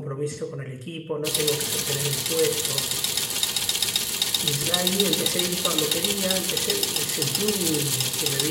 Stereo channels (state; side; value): identical; both; correlation 1.00